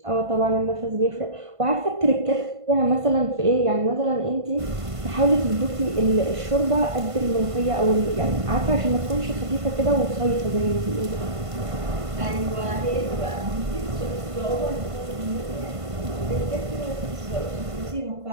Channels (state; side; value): late; left; 1.5 ms